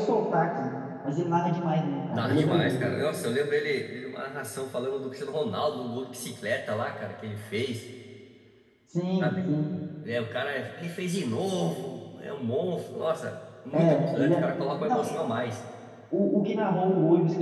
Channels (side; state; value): both; identical; correlation 1.00